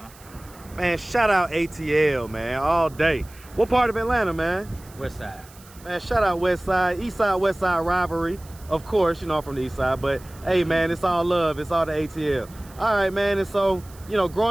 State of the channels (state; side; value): noise; right; hiss, 23 dB below the sound